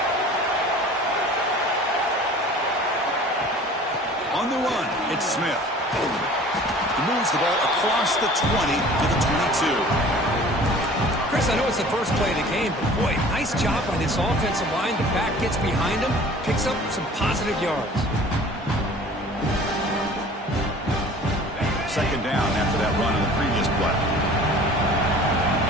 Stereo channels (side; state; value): both; normal; correlation 0.46